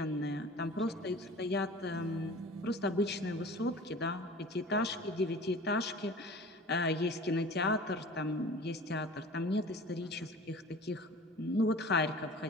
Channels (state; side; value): normal; both; correlation 0.41